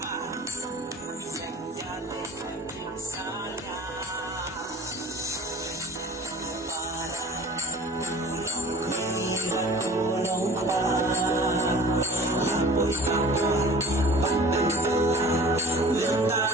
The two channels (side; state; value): both; normal; correlation 0.45